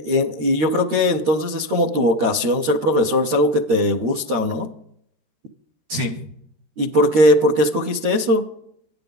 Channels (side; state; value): left; late; 13 ms